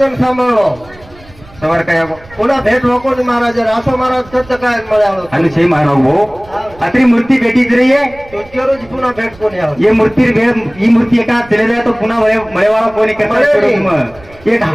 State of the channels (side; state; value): right; noise; rumble, 23 dB below the sound